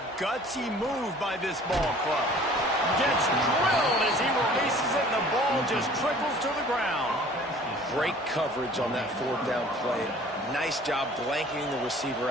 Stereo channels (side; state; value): both; normal; correlation 0.50